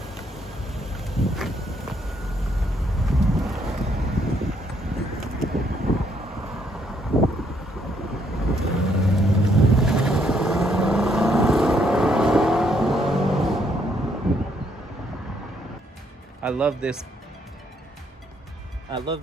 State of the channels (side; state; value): both; normal; correlation 0.71